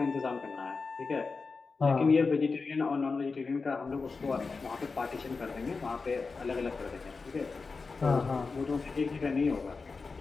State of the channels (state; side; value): quieter; right; 4.4 dB